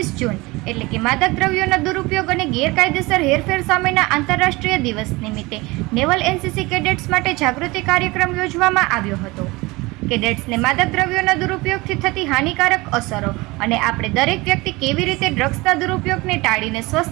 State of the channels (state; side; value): quieter; left; 22.7 dB